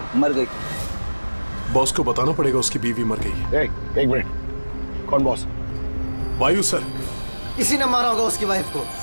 मर गई। बॉस को बताना पड़ेगा उसकी बीवी मर गई। एक मिनट, कौन बॉस? वायु सर। इसी ने मारा होगा उसकी वाइफ को।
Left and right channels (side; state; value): both; inverted; correlation -1.00